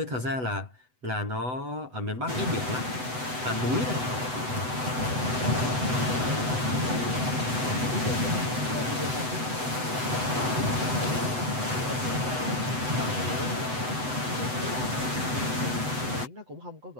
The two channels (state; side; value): late; left; 8.0 ms